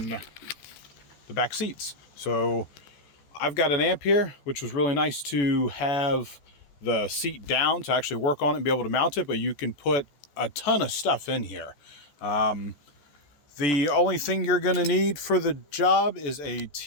the back seats. So I've got an amp here, which was really nice to have the seat down to actually work on it and be able to mount it, but you can put a ton of stuff in here. The only thing you're going to need for the job is a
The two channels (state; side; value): late; right; 14 ms